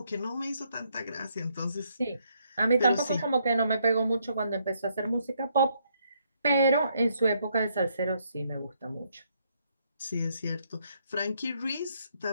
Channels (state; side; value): inverted; both; correlation -0.73